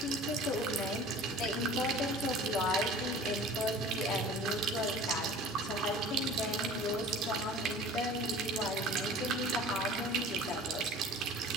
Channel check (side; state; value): both; normal; correlation 0.43